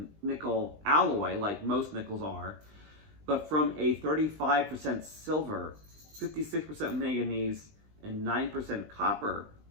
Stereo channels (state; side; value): late; left; 20 ms